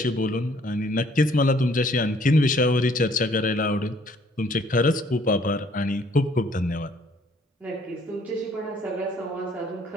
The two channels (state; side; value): normal; both; correlation 0.61